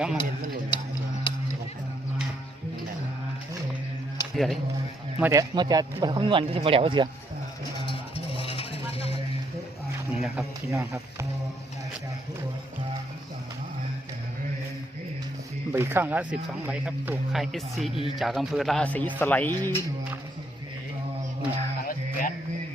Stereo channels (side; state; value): both; normal; correlation 0.73